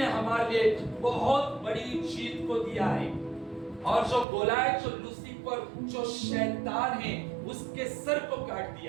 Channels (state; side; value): drops out; left; at 4.2 s